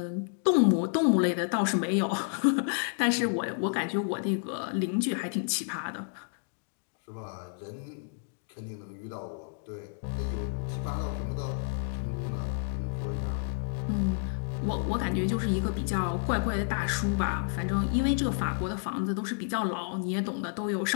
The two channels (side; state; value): right; silent; 58 dB below the other